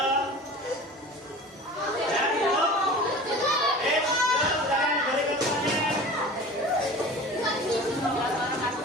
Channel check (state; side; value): normal; both; correlation 0.38